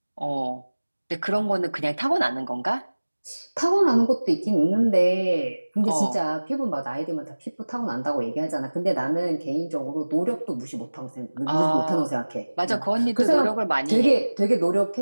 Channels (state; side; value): inverted; both; correlation -1.00